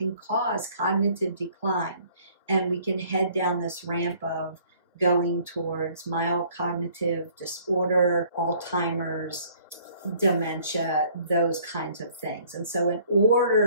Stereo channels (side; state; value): both; inverted; correlation -0.58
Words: cause cognitive decline, and we can head down this ramp of going towards mild cognitive disorder, Alzheimer's, dementia, those kinds of things. And so in